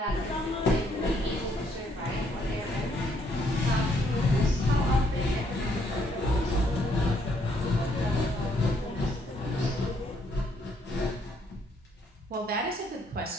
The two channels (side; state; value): both; normal; correlation 0.70